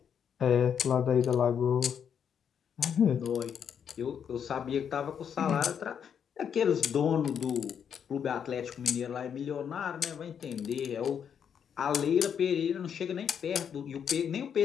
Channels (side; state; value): right; quieter; 7.9 dB